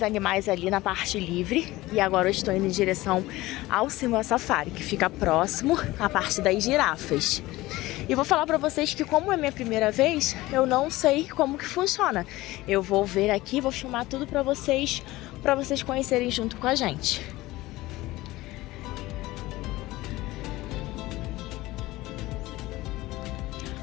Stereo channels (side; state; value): right; quieter; 18.5 dB